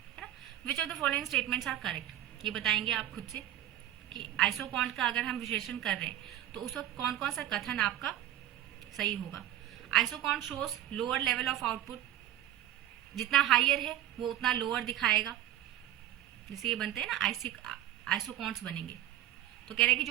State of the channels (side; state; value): left; quieter; 12.4 dB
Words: ना, which of the following statements are correct, ये बताएंगे आप खुद से कि आइसोक्वांट का अगर हम विश्लेषण कर रहे हैं तो उस वक्त कौन कौन सा कथन आपका सही होगा। Isoquant shows lower level of output, जितना हाइयर है वो उतना लोअर दिखाएगा, जैसे ये बनते हैं ना आइसोक्वांट्स बनेंगे, तो कह रहे हैं कि